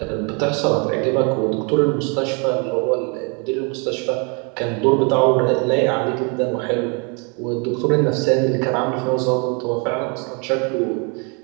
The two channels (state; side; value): quieter; left; 34.0 dB